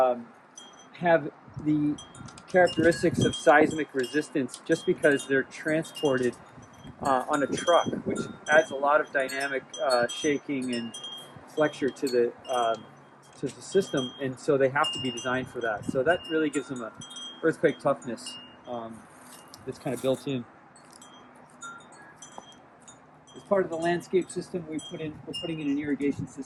the characteristics of seismic resistance just because they're transported on a truck, which adds a lot of dynamic shaking and flexure to the system, and so they have to be designed for that. So that really gives them a earthquake toughness that's kind of built in. As part of the landscape system, we're putting in an irrigation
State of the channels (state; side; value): identical; both; correlation 1.00